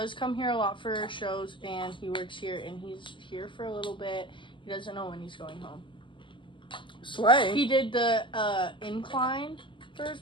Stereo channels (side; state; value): right; late; 0.24 ms